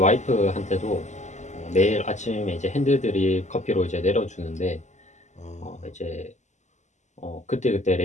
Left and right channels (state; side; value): late; right; 0.34 ms